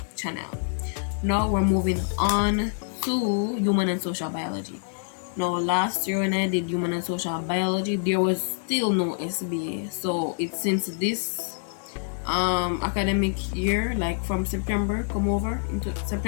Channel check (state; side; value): silent; right; digital silence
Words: channel. Now we're moving on to human and social biology. Now last year when I did human and social biology, there was still no SBA. So it's since this academic year, like from September come over into